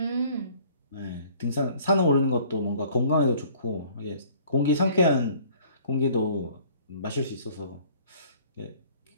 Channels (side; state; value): both; inverted; correlation -0.54